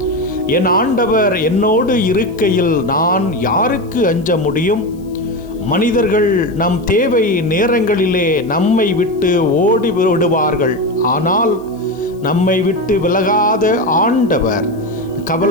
என் ஆண்டவர் என்னோடு இருக்கையில் நான் யாருக்கு அஞ்ச முடியும்? மனிதர்கள் நம் தேவை நேரங்களிலே நம்மை விட்டு ஓடி விடுவார்கள். ஆனால் நம்மை விட்டு விலகாத ஆண்டவர்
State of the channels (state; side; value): noise; left; hiss, 30 dB below the sound